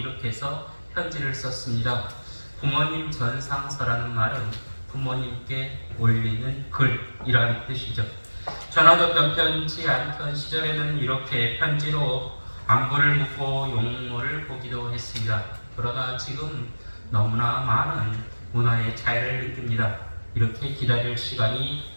해서 편지를 썼습니다. 부모님 전상서라는 말은 부모님께 올리는 글이라는 뜻이죠. 전화도 편지 않던 시절에는 이렇게 편지로 안부를 묻고 용모를 보기도 했습니다. 그러나 지금 너무나 많은 문화의 차이를 느낍니다. 이렇게 기다릴 시간이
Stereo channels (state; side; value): inverted; both; correlation -1.00